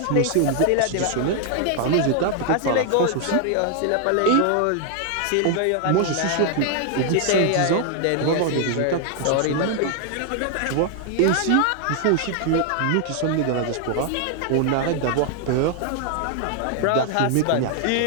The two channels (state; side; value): different; both; correlation 0.00